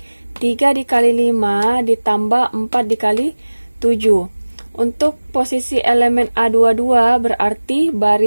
3 dikali 5 ditambah 4 dikali 7. Untuk posisi elemen A22 berarti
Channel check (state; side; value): inverted; both; correlation -1.00